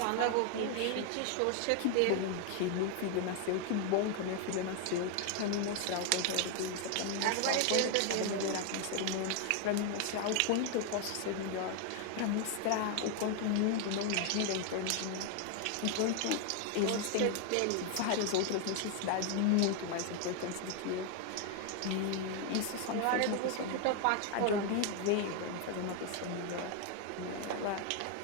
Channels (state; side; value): different; both; correlation 0.01